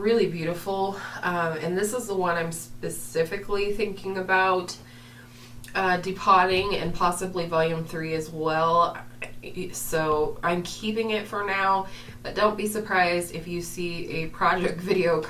beautiful, and this is the one I'm specifically thinking about depotting, and possibly volume 3 as well. So I'm keeping it for now, but don't be surprised if you see a project video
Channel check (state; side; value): identical; both; correlation 1.00